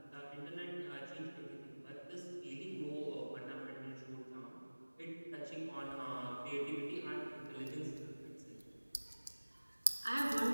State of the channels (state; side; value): inverted; both; correlation -1.00